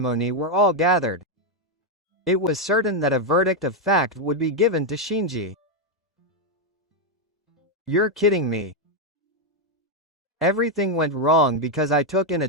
were all gathered. It was certain that a verdict of fact would be given to Shinji. You're kidding me. Everything went wrong because I took in a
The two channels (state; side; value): normal; both; correlation 0.03